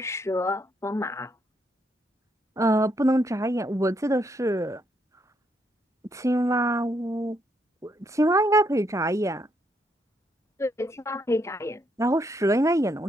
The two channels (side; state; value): both; normal; correlation 0.75